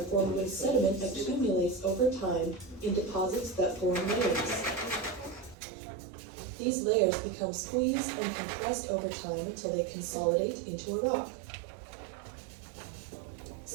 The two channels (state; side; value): drops out; left; at 5.6 s